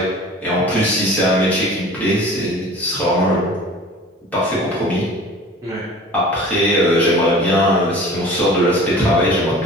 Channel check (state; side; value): normal; both; correlation 0.43